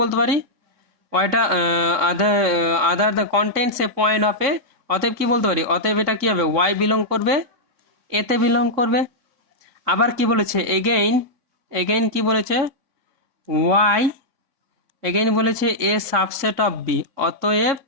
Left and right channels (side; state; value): left; late; 3.6 ms